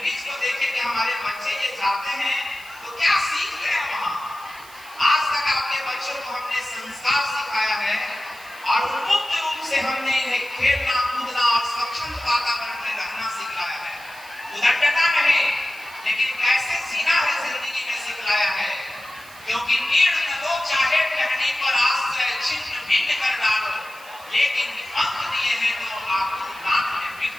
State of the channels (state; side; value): noise; right; hiss, 21 dB below the sound